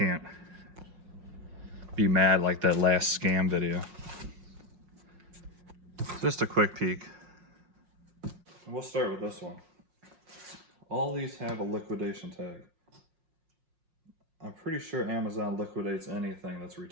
be mad like that last scam video. Just a quick peek. And we'll start with this one. All these have a liquidation tag. I'm pretty sure Amazon liquidates anything that's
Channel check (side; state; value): left; late; 5.6 ms